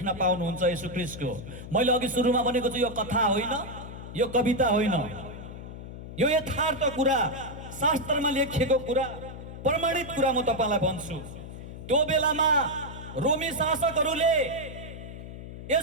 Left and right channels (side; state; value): left; noise; hum, 11 dB below the sound